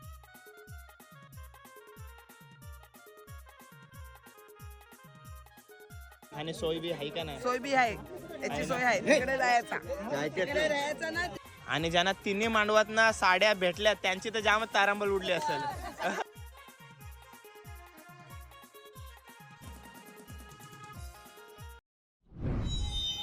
आणि सोय बी आहे का नाही? सोय बी आहे, याची सोय आहे, तिकडे जायचा ना. आणि ज्यांना तिन्ही मांडवात ना साड्या भेटल्या त्यांची तर जामच तारांबळ उडली असेल.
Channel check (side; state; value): both; identical; correlation 1.00